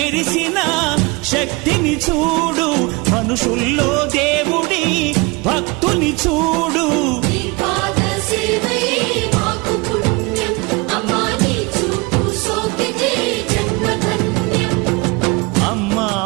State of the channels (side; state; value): left; quieter; 26.4 dB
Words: శక్తిని చూడు, మనుషుల్లో దేవుడి భక్తుని చూడు.